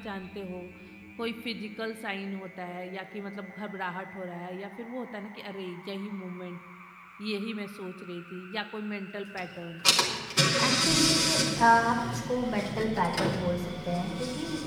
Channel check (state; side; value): identical; both; correlation 1.00